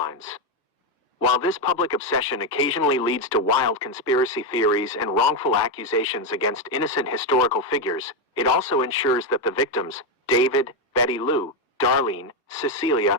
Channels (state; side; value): normal; both; correlation 0.07